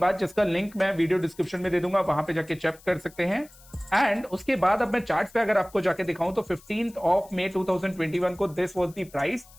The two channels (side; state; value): left; noise; hiss, 24 dB below the sound